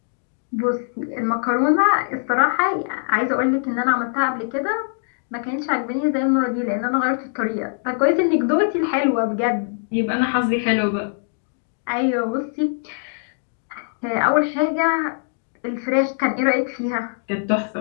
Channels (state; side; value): silent; right; digital silence